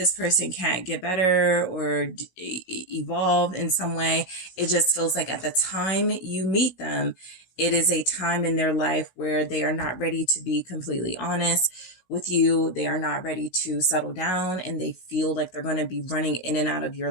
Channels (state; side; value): late; right; 16 ms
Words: person can't get better or evolve in some way. It just feels like at the time you meet them, it is a time in their life where they are not ready to be completely honest with you. They are not ready to settle down, and they feel like they're going to be running in and out of your